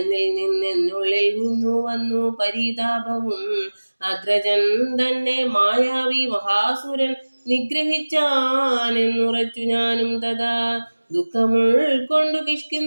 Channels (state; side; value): inverted; both; correlation -1.00